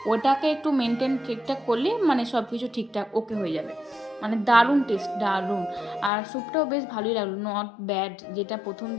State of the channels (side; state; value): right; drops out; at 6.1 s